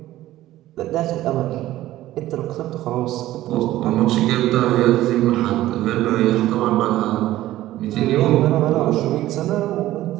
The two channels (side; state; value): left; quieter; 15.0 dB